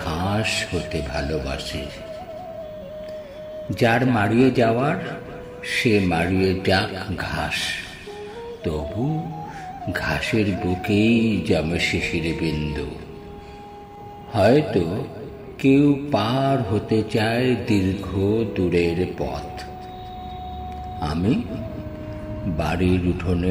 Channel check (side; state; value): both; identical; correlation 1.00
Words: ঘাস হতে ভালোবাসি। যার মারিয়ে যাওয়ার সে মারিয়ে যাক ঘাস, তবু ঘাসের বুকেই জমে শিশির বিন্দু। হয়তো কেউ পার হতে চায় দীর্ঘ দূরের পথ, আমি বাড়ির